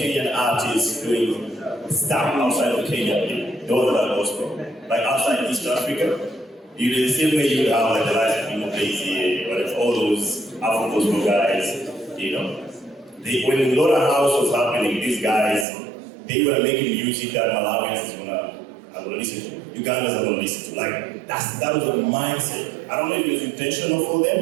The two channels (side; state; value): left; drops out; at 15.7 s